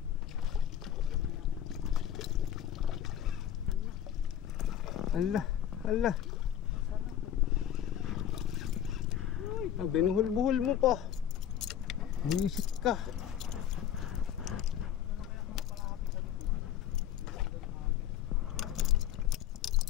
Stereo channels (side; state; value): right; quieter; 10.3 dB